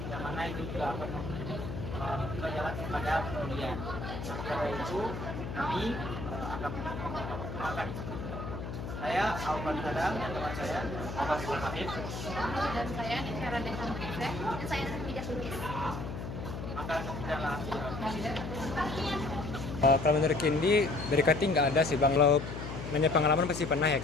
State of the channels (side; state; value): left; noise; hum, 7 dB below the sound